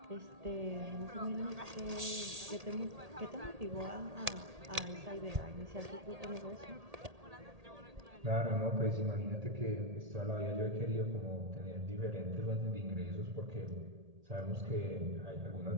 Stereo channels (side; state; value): left; late; 1.8 ms